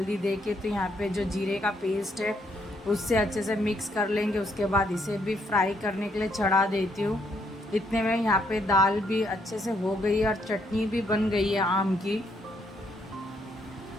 दे के। तो यहाँ पे जो जीरे का पेस्ट है उससे अच्छे से मिक्स कर लेंगे। उसके बाद इसे भी फ्राई करने के लिए चढ़ा देती हूँ। इतने में यहाँ पे दाल भी अच्छे से हो गई है और चटनी भी बन गई है आम की।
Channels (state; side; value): normal; both; correlation 0.73